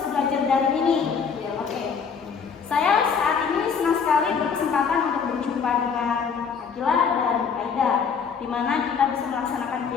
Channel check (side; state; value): right; quieter; 6.2 dB